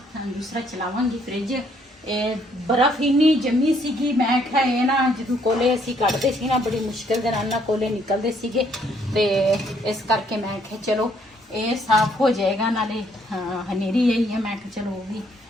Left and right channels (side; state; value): both; normal; correlation 0.67